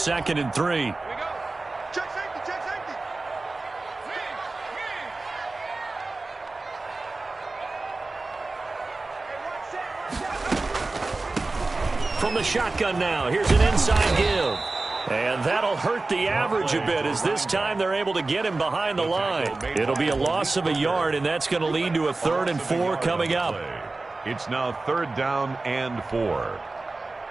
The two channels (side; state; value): left; quieter; 3.4 dB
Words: and 3. Check safety. From the shotgun now, here's an inside give. And that'll hurt the average a bit as this time they're able to get him behind the line. It'll be a loss of a yard, and that's going to lead to a 3rd and 4 coming up. It's now 3rd down and 4.